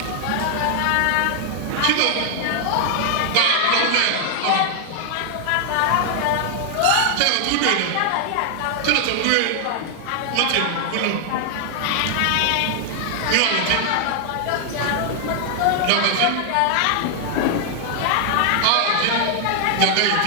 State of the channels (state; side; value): different; both; correlation 0.00